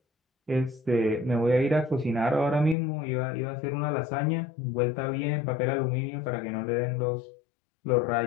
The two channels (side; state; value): right; drops out; at 2.8 s